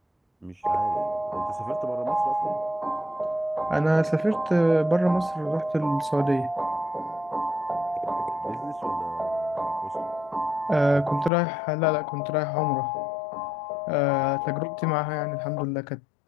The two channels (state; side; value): drops out; right; at 11.3 s